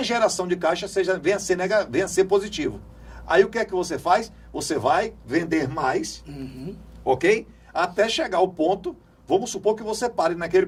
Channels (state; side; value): identical; both; correlation 1.00